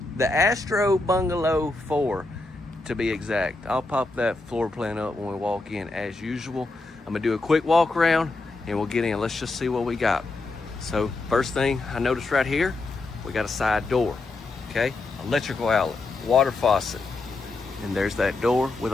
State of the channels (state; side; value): quieter; right; 3.3 dB